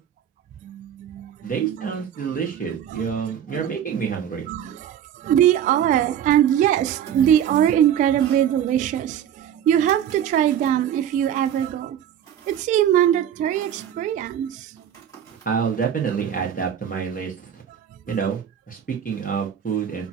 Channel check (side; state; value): left; quieter; 9.7 dB